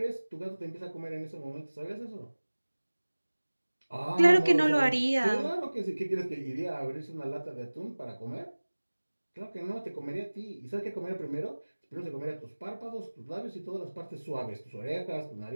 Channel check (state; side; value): inverted; both; correlation -1.00